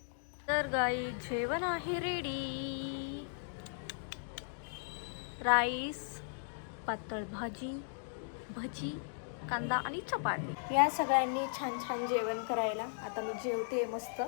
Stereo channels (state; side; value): silent; right; digital silence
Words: तर गाई जेवण आहे रेडी. राईस, पातळ भाजी, भजी, कांदा आणि चपाती. या सगळ्यांनी छान छान जेवण करायला. आता मी जेवते मस्त.